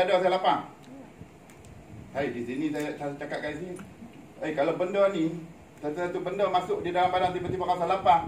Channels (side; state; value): both; identical; correlation 1.00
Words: saya lapang. Hai, di sini saya cakap kat sini. Kalau benda ni, satu-satu benda masuk di dalam badan tiba-tiba rasa